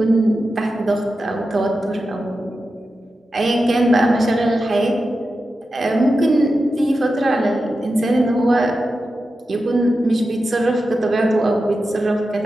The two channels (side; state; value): both; normal; correlation 0.91